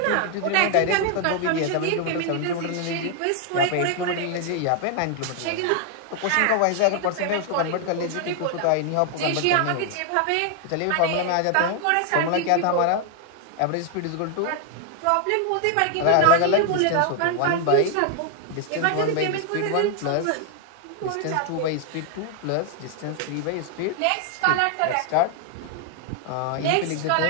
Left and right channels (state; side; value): different; both; correlation 0.00